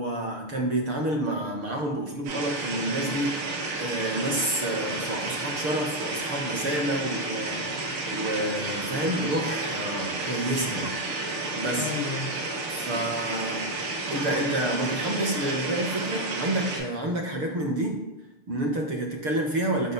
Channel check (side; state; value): left; late; 6.8 ms